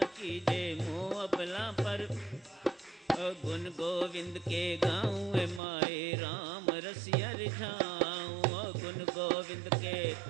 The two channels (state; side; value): drops out; left; at 5.6 s